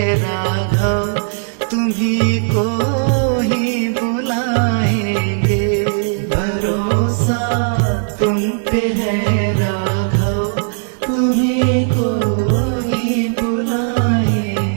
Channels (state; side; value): silent; left; 68 dB below the other